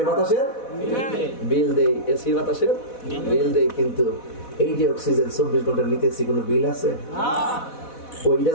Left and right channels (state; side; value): late; right; 4.1 ms